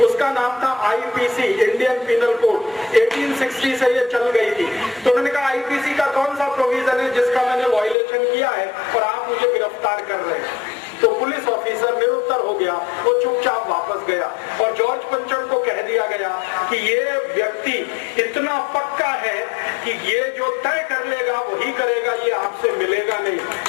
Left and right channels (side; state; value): right; drops out; at 8.0 s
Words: उसका नाम था आईपीसी, इंडियन पिनल कोड, 1860 से ये चल गई थी। तो उन्होंने कहा आईपीसी का कौन सा प्रोविजन है जिसका मैंने वायलेशन किया है और आप मुझे गिरफ्तार कर रहे हैं। तो पुलिस ऑफिसर निरुत्तर हो गया, वो चुपचाप वापस गया और जॉर्ज पंचम को कह दिया गया कि ये व्यक्ति इतना पक्का है कि ये जो तय कर लेगा वही करेगा, ये आपसे मिलेगा नहीं।